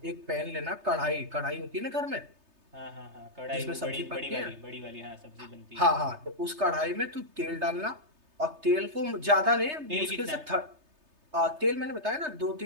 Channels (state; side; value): late; left; 3.3 ms